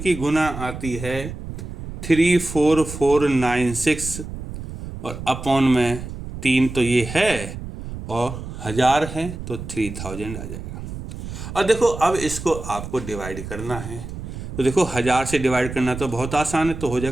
गुना आती है 34496, और अपॉन में 3 तो ये है और 1000 है, तो 3000 आ जाएगा। और देखो अब इसको आपको डिवाइड करना है, तो देखो 1000 से डिवाइड करना तो बहुत आसान है, तो हो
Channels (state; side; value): noise; right; rumble, 9 dB below the sound